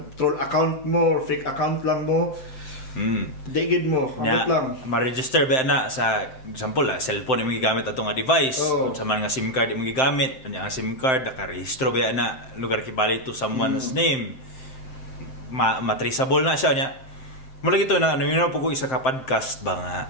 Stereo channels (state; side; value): late; right; 7.7 ms